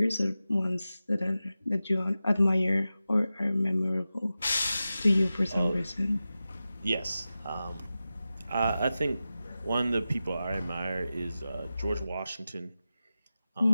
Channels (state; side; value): inverted; both; correlation -0.94